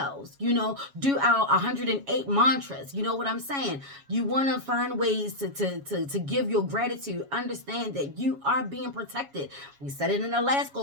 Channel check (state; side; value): late; left; 7.2 ms